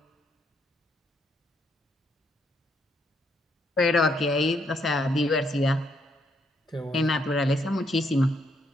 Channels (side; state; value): both; normal; correlation 0.74